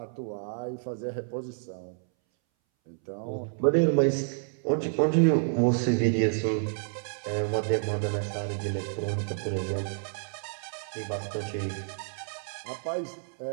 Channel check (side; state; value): left; silent; 58 dB below the other